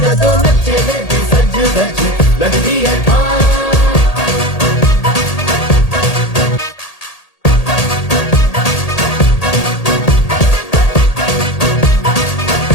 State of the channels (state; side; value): late; right; 1.8 ms